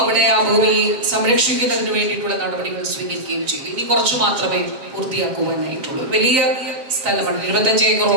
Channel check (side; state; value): left; late; 7.7 ms